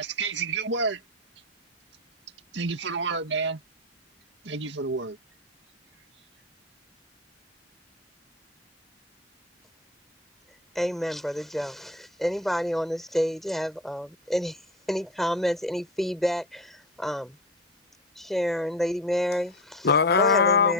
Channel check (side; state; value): both; normal; correlation 0.24